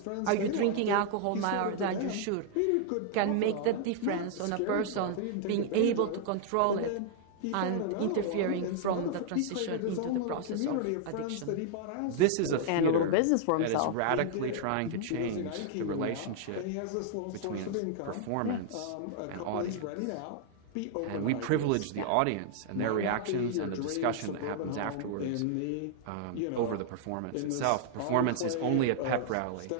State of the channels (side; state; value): both; different; correlation -0.01